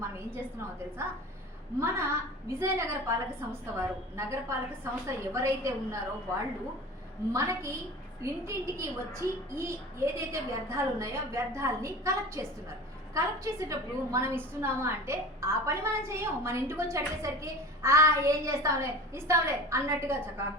మనం ఏం చేస్తున్నామో తెలుసా? మన విజయనగర పాలక సంస్థ వారు, నగరపాలక సంస్థ ఎవరైతే ఉన్నారో వాళ్ళు మనకి ఇంటింటికి వచ్చి ఏదైతే వ్యర్థాలు ఉన్నాయో వ్యర్థాలని కలెక్ట్ చేస్తున్నారు. కలెక్ట్ చేసేటప్పుడు మనం ఇస్తున్నామా అంటే ఆ పని మనం చేయం. మన ఇంటికి వచ్చి అడిగేసరికి ఏం చేస్తాంలే ఇస్తాంలే అన్నట్టుగా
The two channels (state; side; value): normal; both; correlation 0.36